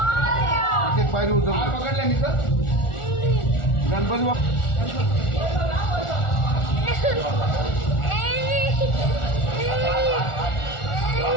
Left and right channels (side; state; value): right; late; 1.4 ms